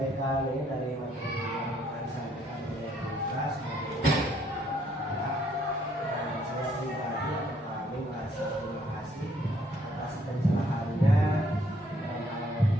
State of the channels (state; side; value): normal; both; correlation 0.67